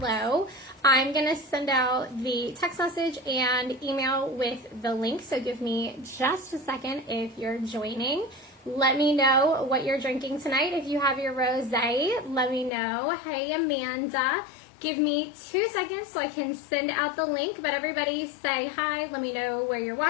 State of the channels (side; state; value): right; drops out; at 12.7 s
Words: I'm going to send out the text message and email with the link, so give me just a second if you're joining. Let me know what you're drinking tonight. If you have your rosé, let me know. Hey, Amanda. Give me 2 seconds so I can send out the link, but everybody say hi. Let me know where you're